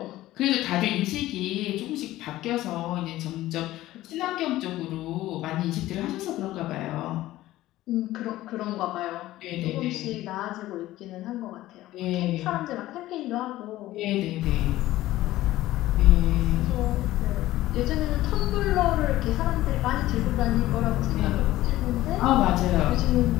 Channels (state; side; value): quieter; right; 15.8 dB